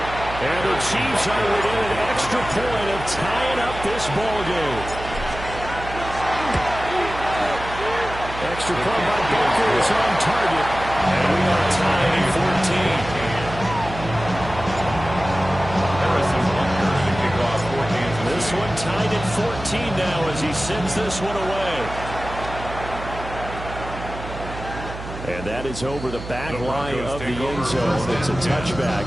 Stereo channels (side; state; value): right; noise; hum, 11 dB below the sound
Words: And the Chiefs are within an extra point of tying up this ball game. extra point by Baker is on target. And we are tied at 14. This one tied at 14 now as he sends this one away. And that is over the back line of the end zone. It's a touchback.